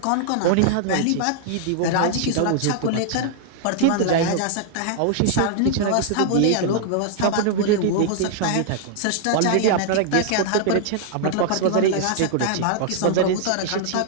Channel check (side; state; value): both; different; correlation -0.01